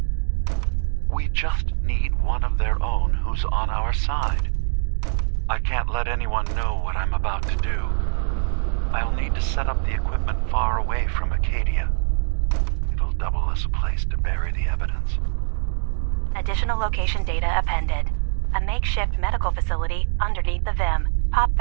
We just need one of their own who's on our side. I can't let anyone know what I'm about to do. I'll need to set up the equipment far away from Acadia. It'll double as a place to bury the evidence. Additional location data appended. A makeshift medical facility underneath the VIM. Pop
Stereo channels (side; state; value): left; silent; 63 dB below the other